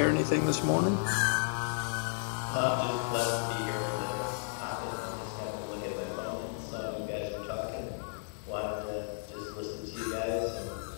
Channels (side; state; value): right; silent; digital silence